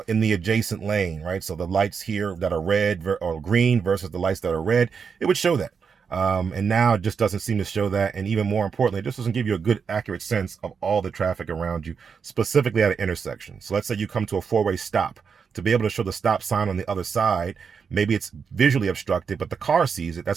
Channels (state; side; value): quieter; left; 6.1 dB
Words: in the adjacent lane, right? So the lights here that are red or green versus the lights that are red, it would show that. And now it just doesn't seem to show that. And even more importantly, it just doesn't give you a good, accurate sense of all the traffic around you, specifically at an intersection. So let's say you come to a four-way stop. To be able to show the stop sign on the other side, maybe it's visually obstructed, but the car sees it. That's